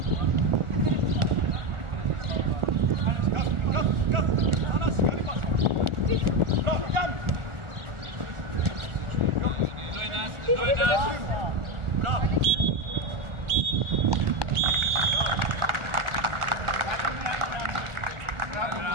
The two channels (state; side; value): late; left; 1.4 ms